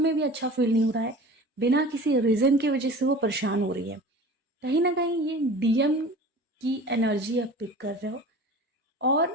भी अच्छा फील नहीं हो रहा है, बिना किसी रीज़न की वजह से वो परेशान हो रही है। कहीं ना कहीं ये डीएम की एनर्जी आप पिक कर रहे हो,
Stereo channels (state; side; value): normal; both; correlation 0.39